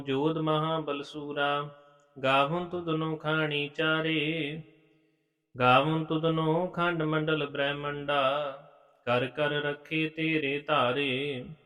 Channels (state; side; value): identical; both; correlation 1.00